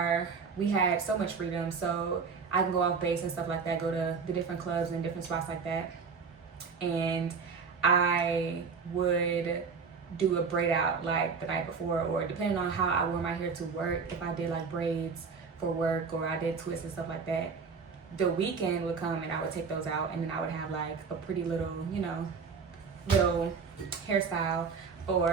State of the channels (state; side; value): quieter; left; 5.4 dB